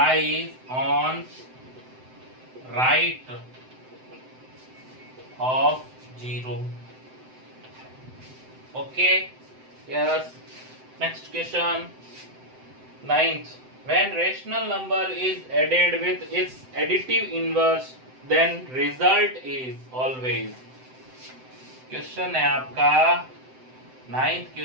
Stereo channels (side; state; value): left; late; 7.8 ms